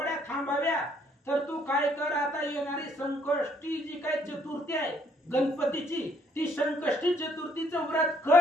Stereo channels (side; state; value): both; normal; correlation 0.67